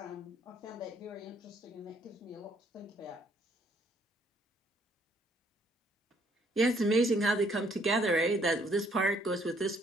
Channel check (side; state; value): both; normal; correlation 0.66